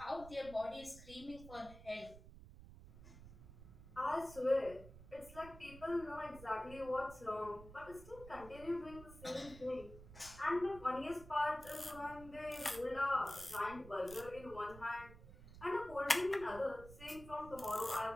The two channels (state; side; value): noise; right; rumble, 16 dB below the sound